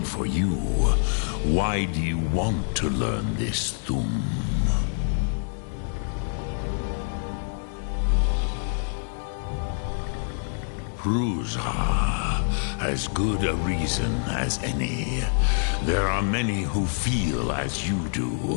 for you. Why do you want to learn this Thum? Pruzha. As good a reason as any. There are many who feel as you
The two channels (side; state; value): right; silent; digital silence